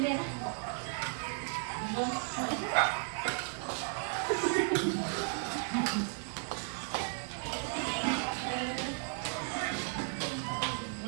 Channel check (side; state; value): left; silent; 55 dB below the other